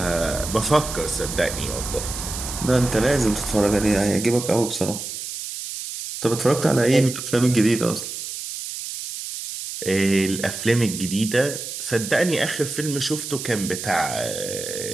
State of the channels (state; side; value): noise; right; hiss, 7 dB below the sound